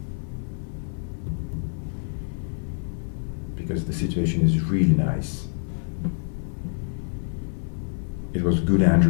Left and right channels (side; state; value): right; silent; 61 dB below the other